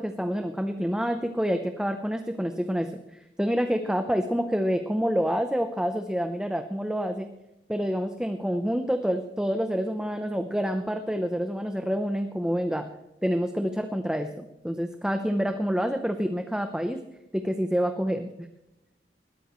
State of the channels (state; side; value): normal; both; correlation 0.94